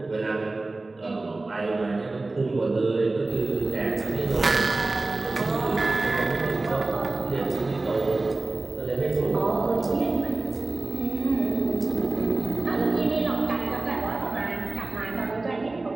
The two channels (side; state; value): left; quieter; 3.2 dB